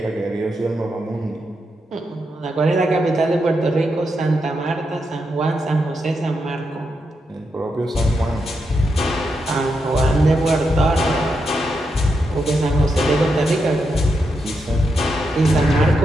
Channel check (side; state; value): both; normal; correlation 0.84